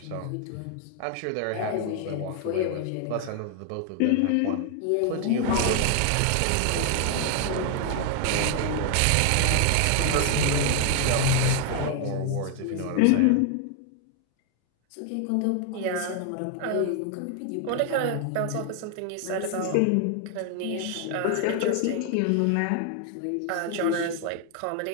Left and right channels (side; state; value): both; different; correlation 0.00